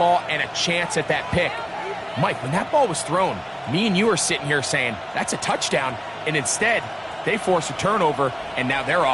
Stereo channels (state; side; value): identical; both; correlation 1.00